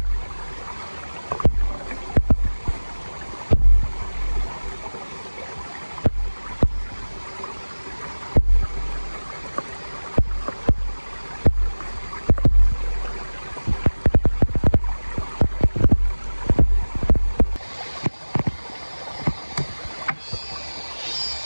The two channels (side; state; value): both; inverted; correlation -1.00